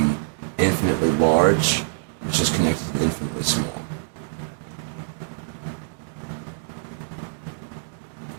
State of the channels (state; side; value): silent; left; digital silence